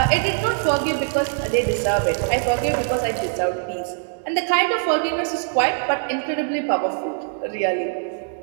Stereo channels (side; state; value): left; silent; 64 dB below the other